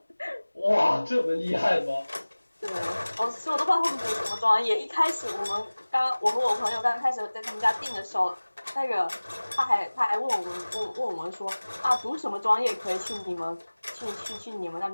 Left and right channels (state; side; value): inverted; both; correlation -1.00